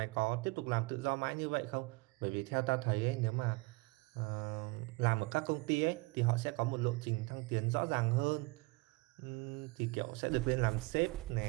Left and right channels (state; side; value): quieter; left; 25.4 dB